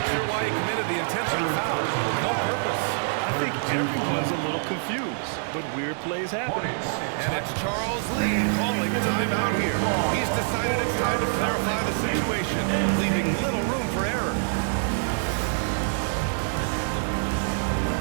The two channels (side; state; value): left; silent; digital silence